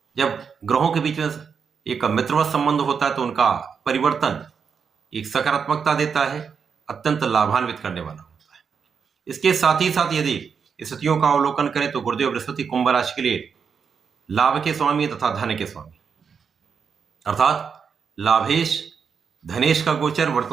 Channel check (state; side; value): quieter; left; 6.3 dB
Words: जब ग्रहों के बीच में एक मित्रवत संबंध होता है तो उनका परिवर्तन एक सकारात्मकता देता है, अत्यंत लाभान्वित करने वाला होता है। इसके साथ ही साथ यदि स्थितियों का अवलोकन करें तो गुरुदेव बृहस्पति कुंभ राशि के लिए लाभ के स्वामी तथा धन के स्वामी, अर्थात लाभेश धनेश का गोचर